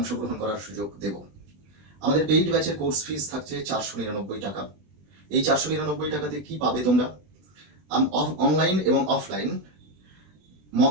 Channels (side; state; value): left; late; 20 ms